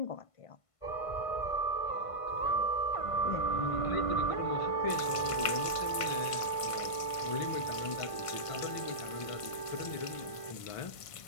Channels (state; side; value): late; right; 1.5 ms